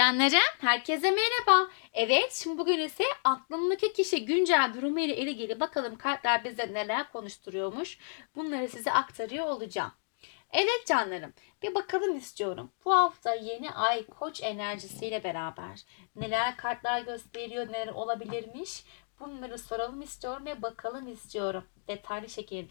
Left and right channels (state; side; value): silent; right; digital silence